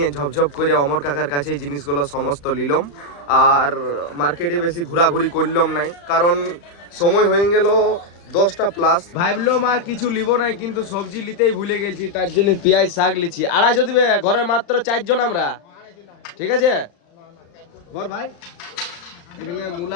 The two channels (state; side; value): late; right; 35 ms